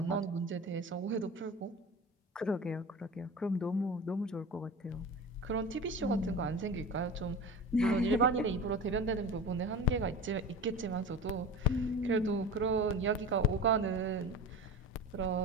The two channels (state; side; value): normal; both; correlation 0.33